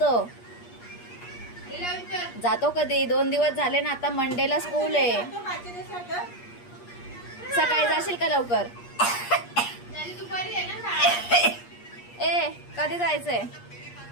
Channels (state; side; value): late; right; 8.4 ms